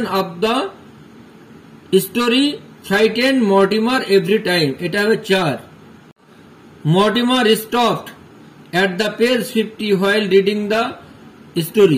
of the story frighten Mortimer every time, এটা হবে 4। Mortimer stopped at the page 50 while reading the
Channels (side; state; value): both; identical; correlation 1.00